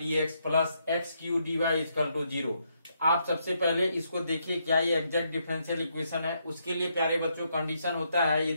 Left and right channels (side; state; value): both; inverted; correlation -0.77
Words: x plus x cube d y is equal to 0। आप सबसे पहले इसको देखिए क्या ये एग्जैक्ट डिफरेंशियल इक्वेशन है। उसके लिए प्यारे बच्चों कंडीशन होता है